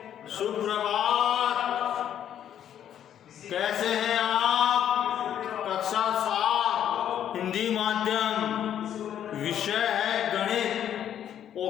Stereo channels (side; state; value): right; quieter; 10.1 dB